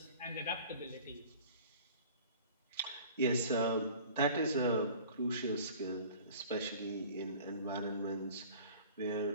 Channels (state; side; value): inverted; both; correlation -0.45